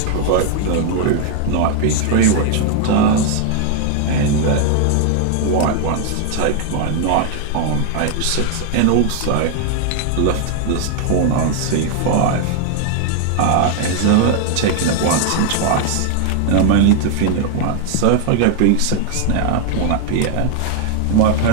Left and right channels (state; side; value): different; both; correlation 0.00